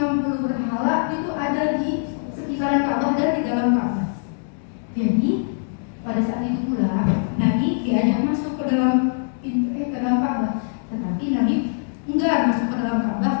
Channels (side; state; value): right; silent; digital silence